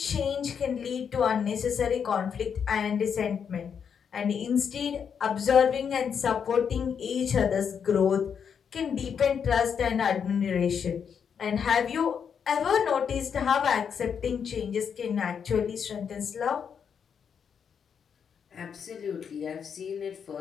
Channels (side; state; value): right; quieter; 7.2 dB